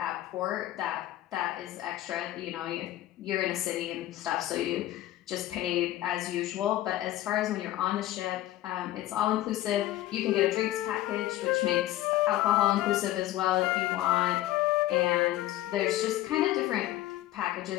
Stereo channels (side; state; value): right; quieter; 14.8 dB